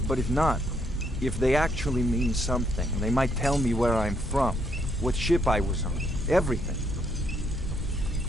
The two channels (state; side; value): normal; both; correlation 0.73